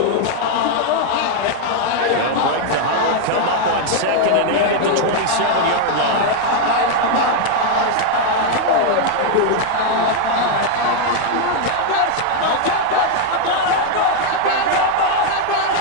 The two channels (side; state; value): both; different; correlation 0.00